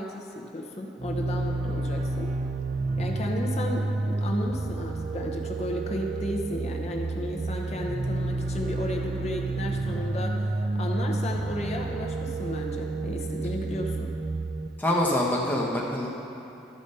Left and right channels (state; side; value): normal; both; correlation 0.76